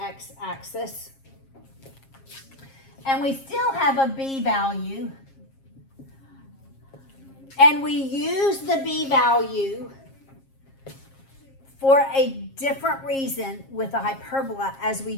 and we still have a B value, and we use the B value for a different reason with a hyperbola as we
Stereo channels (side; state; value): right; late; 7.4 ms